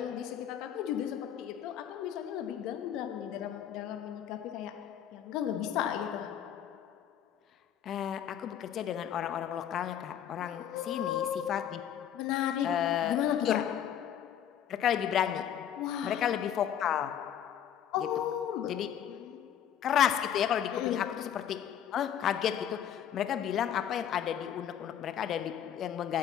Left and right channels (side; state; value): right; quieter; 9.7 dB